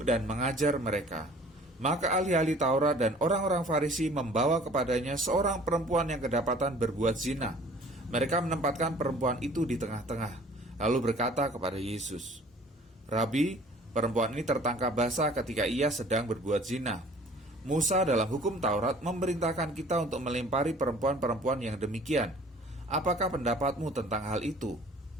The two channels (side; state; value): both; normal; correlation 0.51